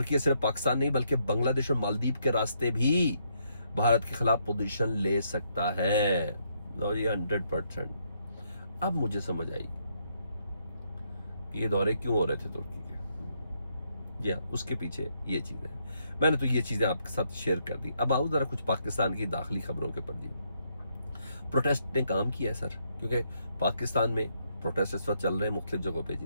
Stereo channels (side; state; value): both; inverted; correlation -0.75